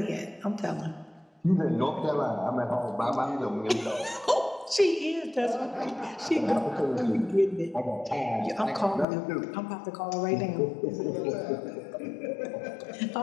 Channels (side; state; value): right; drops out; at 9.1 s